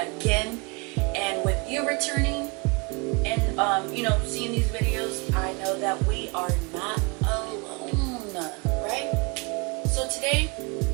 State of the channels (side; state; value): left; quieter; 29.0 dB